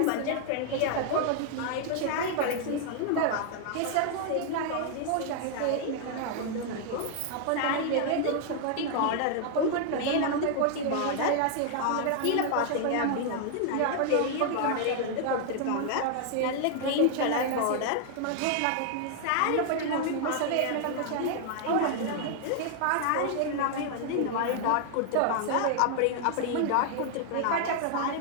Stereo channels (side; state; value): both; different; correlation 0.00